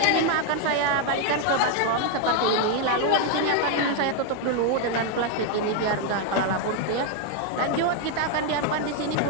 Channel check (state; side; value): different; both; correlation 0.00